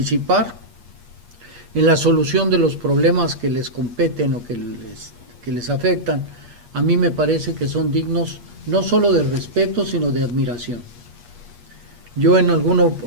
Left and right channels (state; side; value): late; left; 8.4 ms